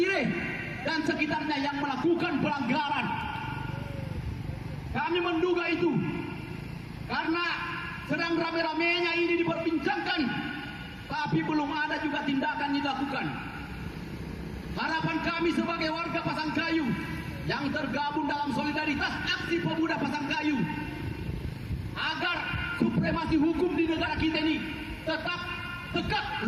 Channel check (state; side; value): identical; both; correlation 1.00